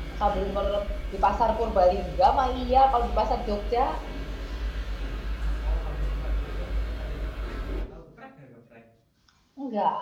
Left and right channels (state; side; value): identical; both; correlation 1.00